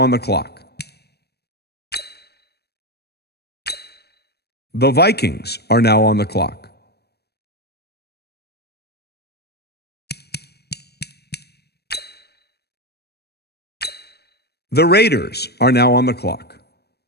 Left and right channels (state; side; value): late; right; 0.47 ms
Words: the clock. The Vikings are now on the clock. The Raiders are now on the clock.